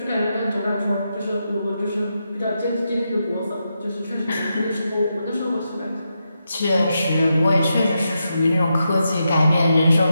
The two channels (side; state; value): both; inverted; correlation -0.85